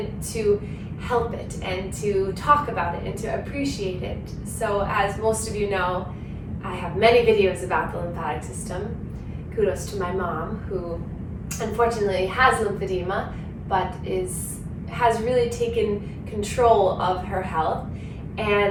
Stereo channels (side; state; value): both; identical; correlation 1.00